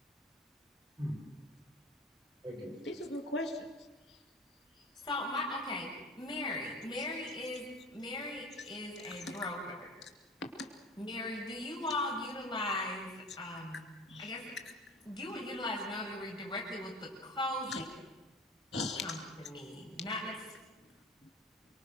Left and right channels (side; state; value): both; normal; correlation 0.37